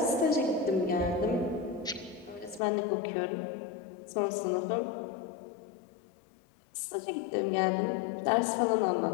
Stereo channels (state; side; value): drops out; right; at 2.6 s